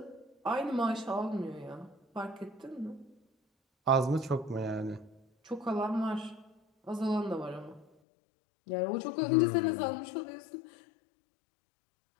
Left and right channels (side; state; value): right; drops out; at 7.9 s